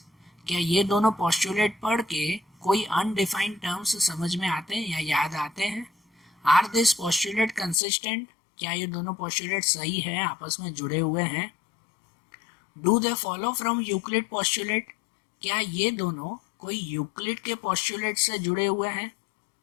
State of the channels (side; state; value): right; drops out; at 7.8 s